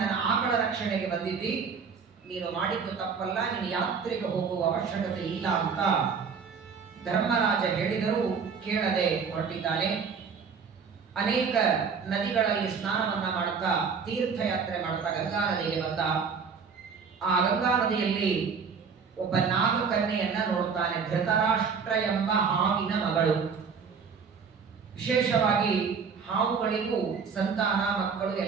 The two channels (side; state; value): left; quieter; 5.8 dB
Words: ಆಕಳ ರಕ್ಷಣೆಗೆ ಬಂದಿದ್ದಿ, ನೀನು ಮಾಡಿದ್ದು ತಪ್ಪಲ್ಲ, ನೀನು ಯಾತ್ರೆಗೆ ಹೋಗುವ ಅವಶ್ಯಕತೆ ಇಲ್ಲ ಅಂತ ಧರ್ಮರಾಜ ಹೇಳಿದರೂ ಕೇಳದೆ ಹೊರಟಿದ್ದಾನೆ. ಅನೇಕ ನದಿಗಳಲ್ಲಿ ಸ್ನಾನವನ್ನ ಮಾಡುತ್ತಾ ತೀರ್ಥಯಾತ್ರೆ ಮಾಡುತ್ತಾ ಗಂಗಾ ನದಿಗೆ ಬಂದ. ಆ ಗಂಗಾ ನದಿಯಲ್ಲಿ ಒಬ್ಬ ನಾಗಕನ್ಯೆಯನ್ನ ನೋಡುತ್ತಾನೆ. ಧೃತರಾಷ್ಟ್ರ ಎಂಬ ಹಾವಿನ ಮಗಳು. ವಿಶೇಷವಾಗಿ ಹಾವುಗಳಿಗೂ ಸಂತಾನ ಮಕ್ಕಳು